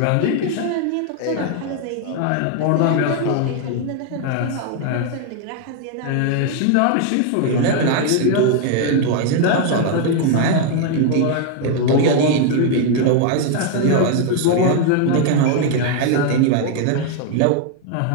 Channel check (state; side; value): different; both; correlation 0.00